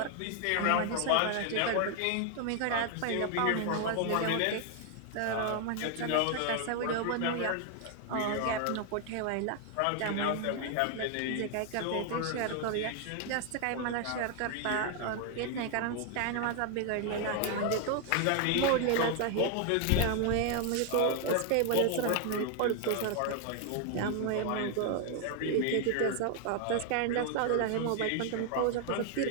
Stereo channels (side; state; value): both; different; correlation 0.00